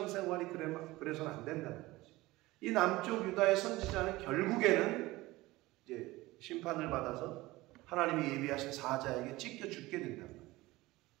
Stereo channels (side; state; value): left; quieter; 19.4 dB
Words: 그래서는 안 된다는 거지. 이 남쪽 유다의 선지자는 결국에는 이제 심판을 받아서 하나님이 예비하신 사자에게 찢겨 죽게 된단 말이에요.